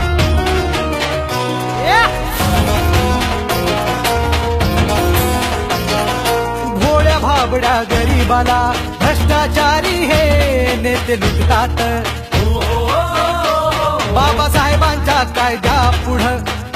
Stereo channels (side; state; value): both; identical; correlation 1.00